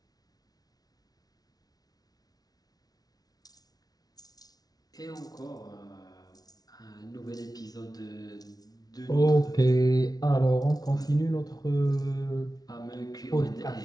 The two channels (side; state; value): right; late; 0.19 ms